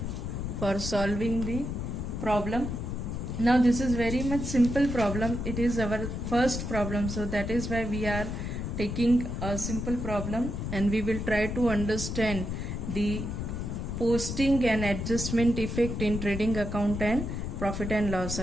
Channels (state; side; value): noise; left; rumble, 4 dB below the sound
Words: for solving the problem. Now this is very much simple problem. It is our first problem, so that is why we are taking a simple problem, and we will try to understand the posting and adjustment effect in trading account and profit and loss